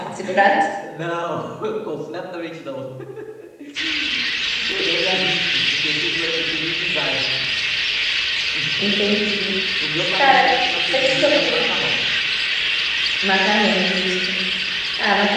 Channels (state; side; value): identical; both; correlation 1.00